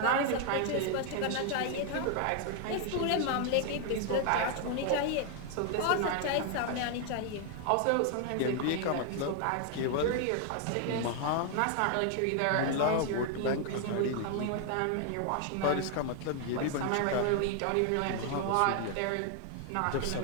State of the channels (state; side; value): different; both; correlation 0.00